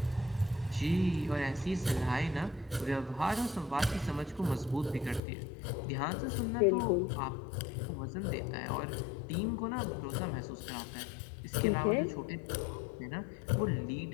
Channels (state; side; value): drops out; right; at 5.2 s